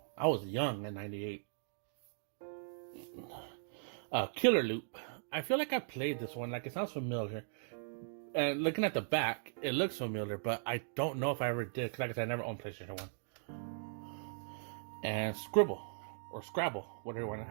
I was young in 98. Killer Loop. I feel like I played this one. Like, it sounds familiar. And looking at the back, it looks familiar, but I don't know if I ever did. Because like I said, I never owned PlayStation 1. And Scribble. Or Scrabble.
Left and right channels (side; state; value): left; silent; digital silence